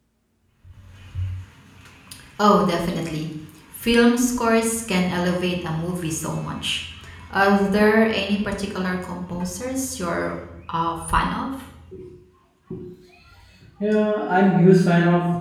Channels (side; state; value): both; identical; correlation 1.00